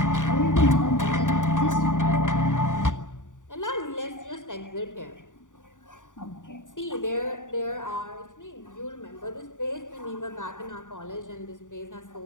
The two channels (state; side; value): late; right; 0.87 ms